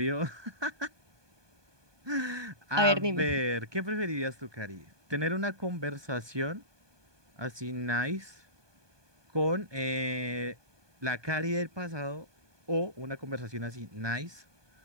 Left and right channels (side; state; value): left; late; 1.2 ms